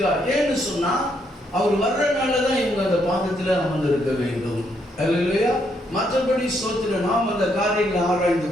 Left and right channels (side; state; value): both; normal; correlation 0.74